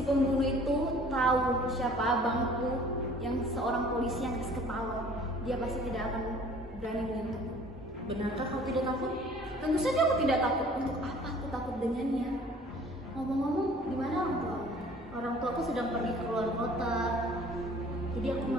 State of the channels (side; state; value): both; normal; correlation 0.51